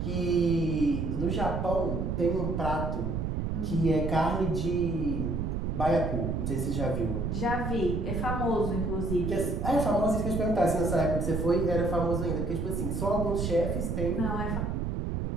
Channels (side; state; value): right; noise; rumble, 1 dB below the sound